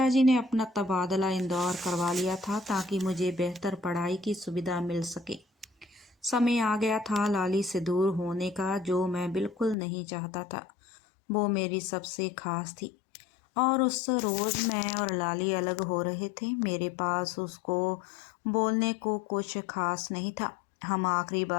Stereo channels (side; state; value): right; drops out; at 9.8 s